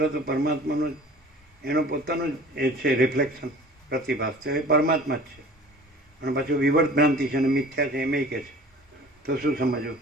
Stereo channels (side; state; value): both; normal; correlation 0.45